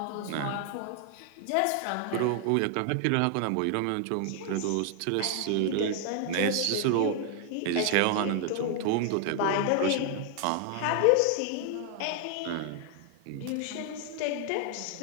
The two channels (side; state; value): both; different; correlation 0.00